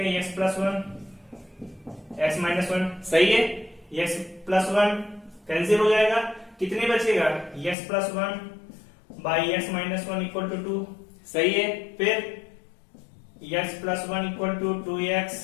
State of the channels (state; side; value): drops out; right; at 7.8 s